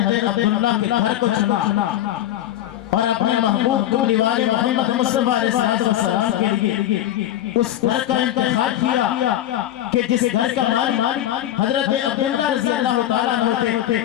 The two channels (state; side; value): quieter; right; 12.6 dB